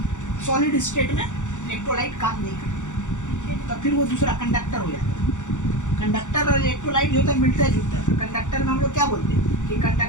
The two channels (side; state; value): right; late; 0.85 ms